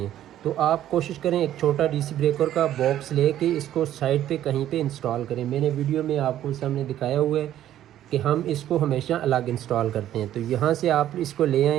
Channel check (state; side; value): quieter; left; 12.1 dB